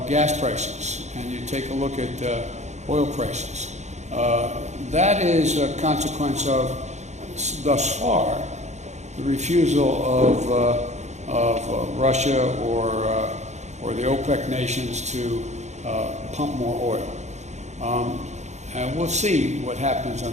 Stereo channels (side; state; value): left; late; 0.33 ms